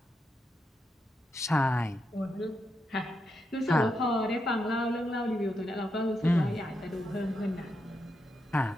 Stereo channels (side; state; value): both; normal; correlation 0.84